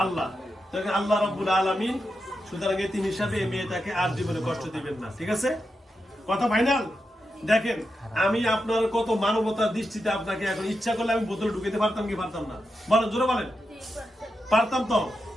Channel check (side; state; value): both; normal; correlation 0.88